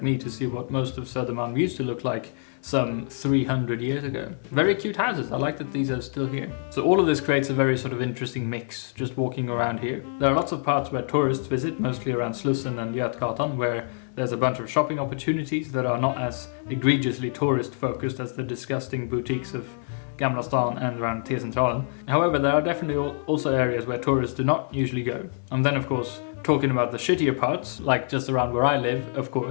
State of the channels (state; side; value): silent; right; digital silence